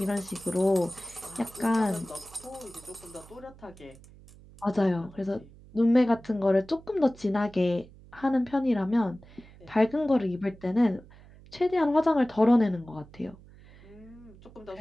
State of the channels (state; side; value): noise; right; hum, 22 dB below the sound